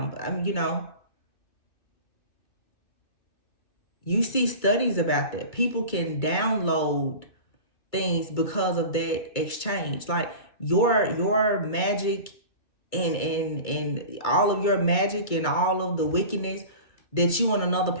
I mean, you see studies about that. People can download things because of that exchange. Like your magic and all of your magic and all of the wickedness that you and another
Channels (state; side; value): late; right; 2.3 ms